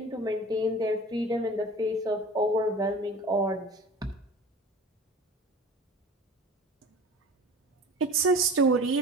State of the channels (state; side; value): normal; both; correlation 0.40